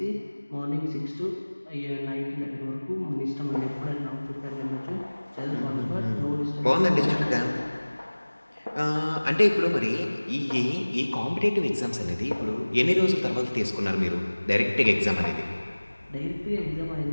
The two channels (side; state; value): both; inverted; correlation -1.00